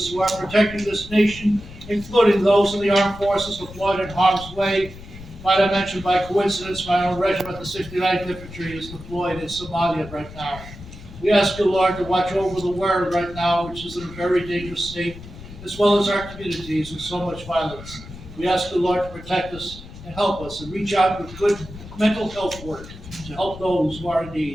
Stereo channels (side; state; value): left; noise; rumble, 15 dB below the sound